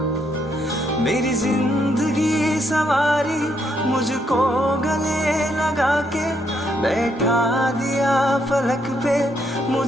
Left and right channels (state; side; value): normal; both; correlation 0.75